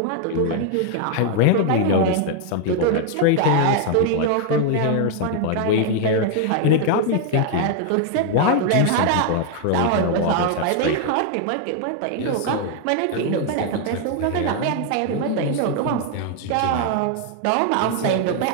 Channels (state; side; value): different; both; correlation 0.00